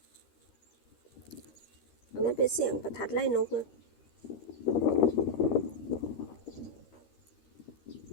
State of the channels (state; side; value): late; right; 13 ms